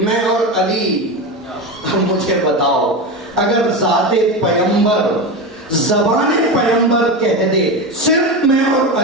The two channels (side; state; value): both; normal; correlation 0.20